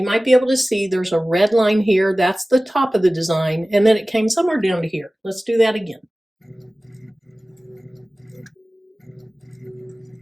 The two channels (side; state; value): both; normal; correlation 0.97